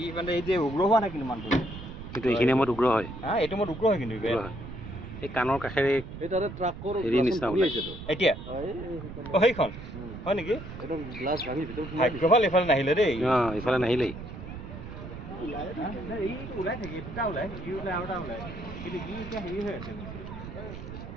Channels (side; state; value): right; noise; rumble, 11 dB below the sound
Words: মানে এই যে উগ্ৰ হোৱা নাই কিন্তু মানুহটো কিন্তু এইখিনি সময়ত উগ্ৰ হয় এইটো মই উগ্ৰ হয় কিন্তু এই কাণৰ কাষেৰে হেৰি নিচিনা ওলাইছেতো এতিয়া সেইখন হয় নেকি ভাগ্যভাল এইফালে নাহিলে দেই এইফালে নাহিলেই ওলাই থাকে দুটা ওলাই ই ওলাই আৰু এটা ওলাই কিন্তু ই এতিয়া হেৰি হৈ আছে